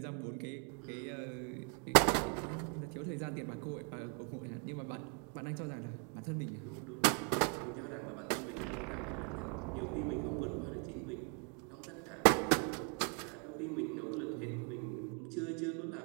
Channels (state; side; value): quieter; left; 38.8 dB